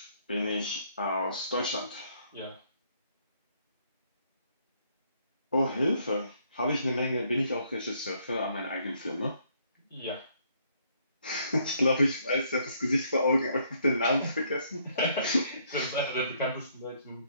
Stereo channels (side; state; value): both; inverted; correlation -0.68